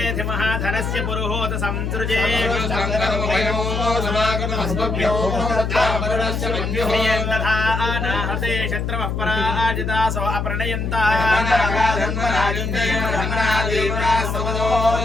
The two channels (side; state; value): left; noise; hum, 2 dB below the sound